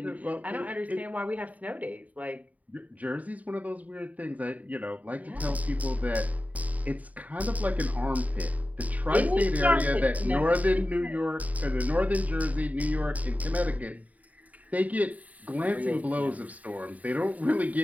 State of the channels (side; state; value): left; late; 0.072 ms